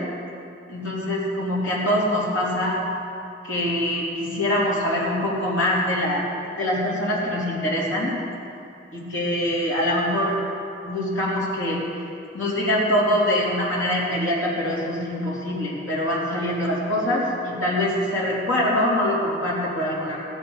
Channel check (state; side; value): normal; both; correlation 0.23